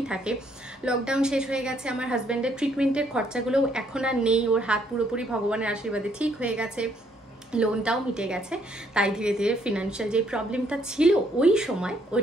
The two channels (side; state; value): both; normal; correlation 0.69